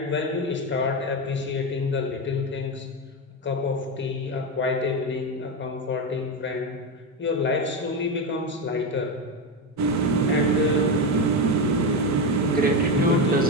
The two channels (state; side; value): normal; both; correlation 0.13